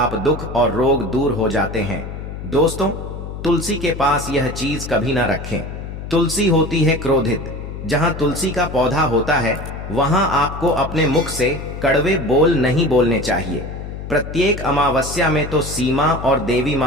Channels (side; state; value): left; noise; hum, 9 dB below the sound